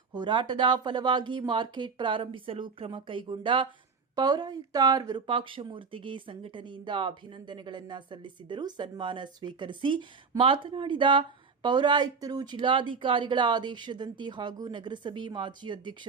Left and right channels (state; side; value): quieter; left; 5.2 dB